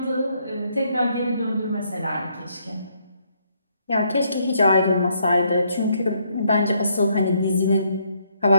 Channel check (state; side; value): inverted; both; correlation -0.72